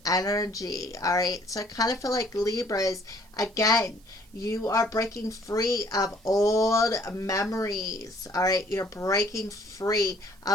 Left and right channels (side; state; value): right; noise; hiss, 30 dB below the sound